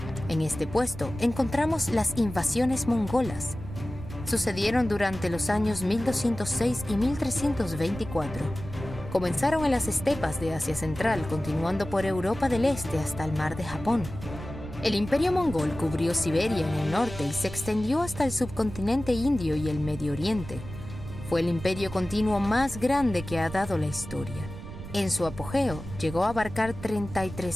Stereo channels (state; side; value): noise; right; rumble, 11 dB below the sound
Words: En este puesto encontramos las invasiones mongolas. Sucedieron durante los años 1206 y 1324. Comenzaron en las estepas de Asia Central, continuando por Europa del Este hasta el Mar de Japón. El imperio mongol cubrió Siberia en el norte y se extendió hasta el subcontinente indio y el Medio Oriente. Fue el imperio continuo más grande que ha dado la historia. En su apogeo, llegó a abarcar